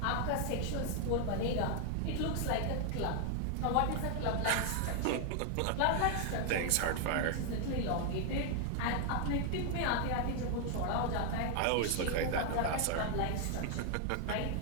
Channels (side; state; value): both; different; correlation 0.00